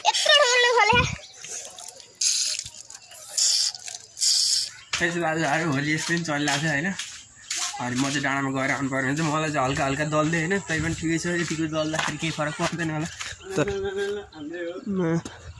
दाजुभाइहरू होली यस्तो पनि चलिरहेको छ होइन अनि म चाहिँ डाँडामा गएर आउनु पर्ने हुन्छ मलाई चाहिँ हल्का हल्का दल्दै होइन तै पनि ठिकै छ यतिको दल्दाखेरि केही फरक पर्दैन होला तर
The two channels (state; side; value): identical; both; correlation 1.00